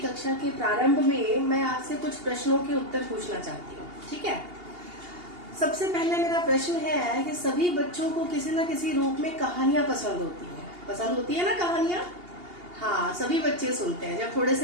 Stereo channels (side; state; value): left; late; 2.8 ms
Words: के प्रारंभ में मैं आपसे कुछ प्रश्नों के उत्तर पूछना चाहती हूँ, ठीक है? सबसे पहले मेरा प्रश्न है कि सभी बच्चों को किसी न किसी रूप में कहानियां पसंद होती हैं। पसंद होती है ना कहानियां? हाँ, सभी बच्चे सुनते हैं। जब थोड़े